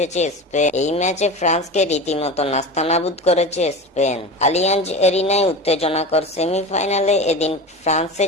স্পেন। এই ম্যাচে ফ্রান্সকে রীতিমতো নাস্তানাবুদ করেছে স্পেন। আলিয়াঞ্জ এরিনায় উত্তেজনাকর সেমিফাইনালে এদিন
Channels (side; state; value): both; normal; correlation 0.28